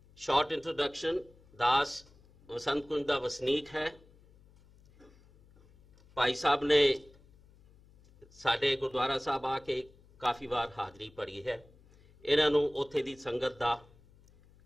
ਸ਼ਾਰਟ ਇੰਟਰੋਡਕਸ਼ਨ, ਦਾਸ ਵਸੰਤ ਕੁੰਜ ਦਾ ਵਸਨੀਕ ਹੈ। ਭਾਈ ਸਾਹਿਬ ਨੇ ਸਾਡੇ ਗੁਰਦੁਆਰਾ ਸਾਹਿਬ ਆ ਕੇ ਕਾਫੀ ਵਾਰ ਹਾਜ਼ਰੀ ਭਰੀ ਹੈ। ਇਹਨਾਂ ਨੂੰ ਉੱਥੇ ਦੀ ਸੰਗਤ ਦਾ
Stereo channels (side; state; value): left; noise; hum, 27 dB below the sound